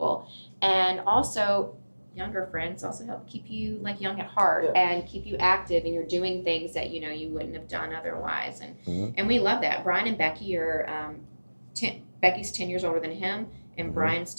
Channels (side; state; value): both; inverted; correlation -1.00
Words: And also younger friends also help keep you like young at heart and keep you active, and you're doing things that you know you wouldn't have done otherwise. And Mhm. and we love that. Brian and Becky are Becky's 10 years older than him, and Mhm. Brian's